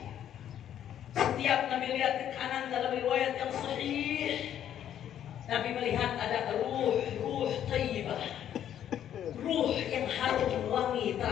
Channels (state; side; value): quieter; right; 10.4 dB